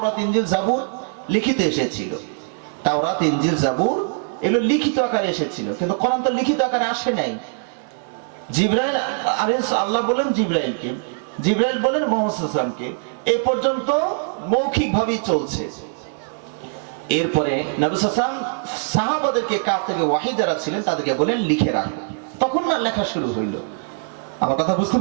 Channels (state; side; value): silent; left; digital silence